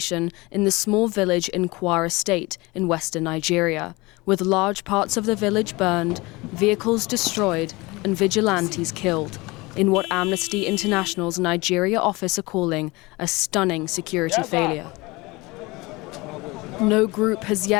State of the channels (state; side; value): quieter; right; 23.2 dB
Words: in the small village in Kwara State in western Nigeria, with large parts of the village burned, vehicles destroyed, and vigilantes killed, in what Amnesty International's Nigeria office are calling a stunning security failure. No group has